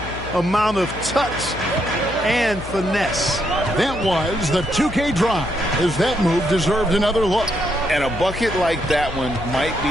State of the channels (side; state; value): left; noise; hum, 12 dB below the sound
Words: amount of touch and finesse. That was the 2K drive, as that move deserved another look. And a bucket like that one might be